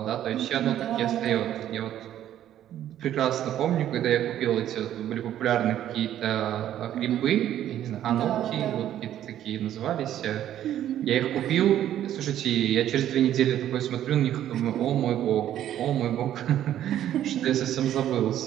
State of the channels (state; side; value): quieter; left; 11.5 dB